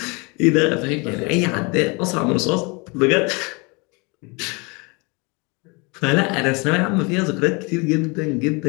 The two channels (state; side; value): quieter; right; 29.2 dB